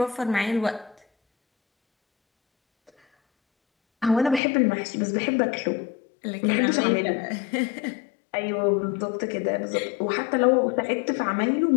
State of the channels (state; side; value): drops out; right; at 4.4 s